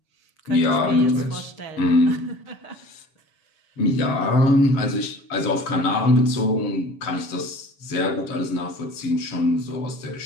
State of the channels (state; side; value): late; right; 7.0 ms